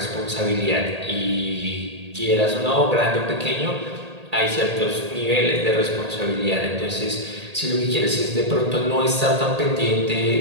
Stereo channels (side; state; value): left; late; 1.8 ms